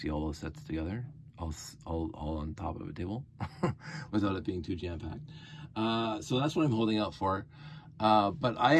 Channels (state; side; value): identical; both; correlation 1.00